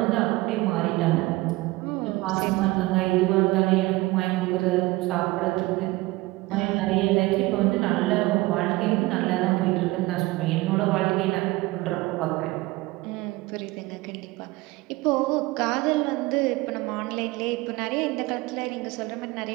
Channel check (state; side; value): quieter; left; 20.9 dB